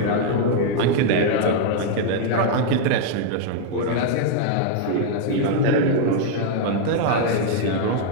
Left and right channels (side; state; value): both; different; correlation 0.00